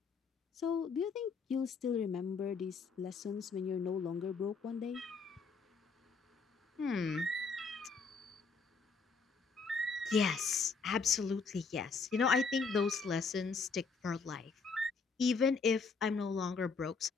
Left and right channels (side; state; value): right; quieter; 4.8 dB